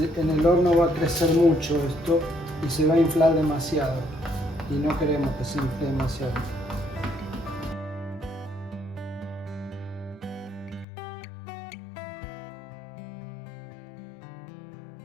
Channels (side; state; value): right; drops out; at 10.9 s